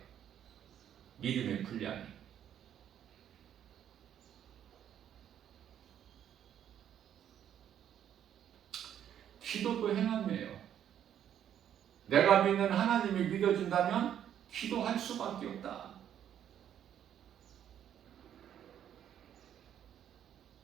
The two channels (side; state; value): left; quieter; 10.0 dB